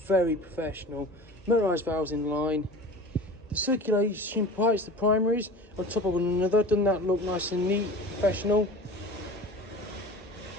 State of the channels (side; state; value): both; normal; correlation 0.38